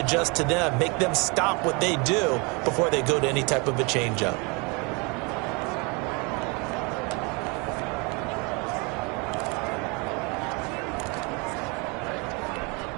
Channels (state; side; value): quieter; left; 30.0 dB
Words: to them. Make them stop what they do before they go to any type of a changeup.